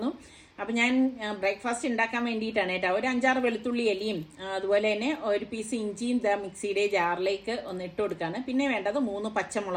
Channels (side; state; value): both; identical; correlation 1.00